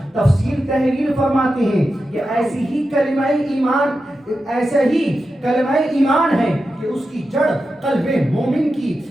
تفسیر تحریر فرماتے ہیں کہ ایسی ہی کلمہ ایمان ہے کہ اس کی جڑ قلب مومن کی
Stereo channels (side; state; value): both; normal; correlation 0.90